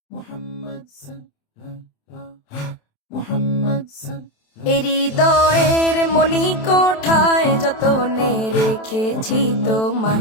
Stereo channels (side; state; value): right; late; 27 ms